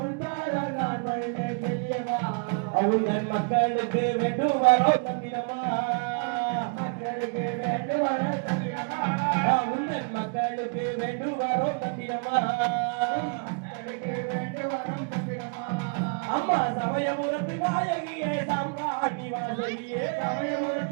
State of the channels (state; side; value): quieter; left; 37.0 dB